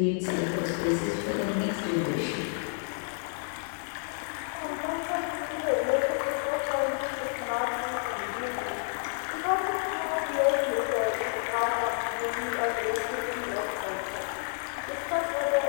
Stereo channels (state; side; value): silent; right; digital silence